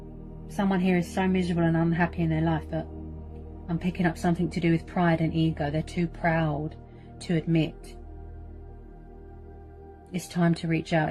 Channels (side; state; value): both; identical; correlation 1.00